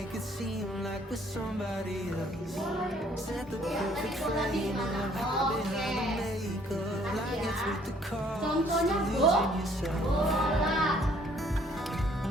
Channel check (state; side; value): normal; both; correlation 0.62